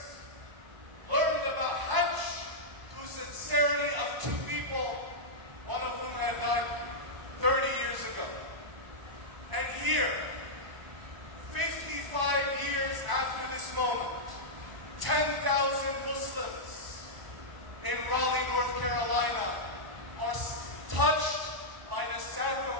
learned about Hajj through sincerity of two people, one of whom had died 30 years ago. And here, 55 years after this moment, 10,000 Muslims in Raleigh, North Carolina are touched by the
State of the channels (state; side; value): late; left; 1.0 ms